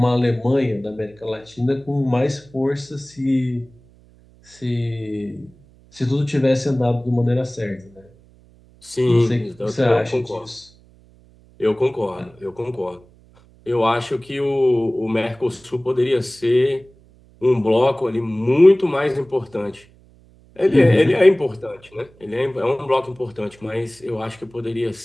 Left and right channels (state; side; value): noise; right; hum, 28 dB below the sound